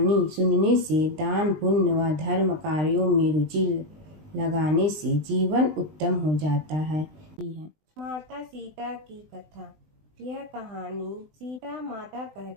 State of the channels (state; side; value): late; left; 19 ms